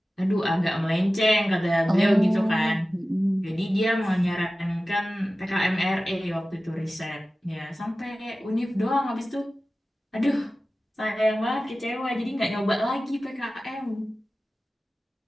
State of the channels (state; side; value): normal; both; correlation 0.96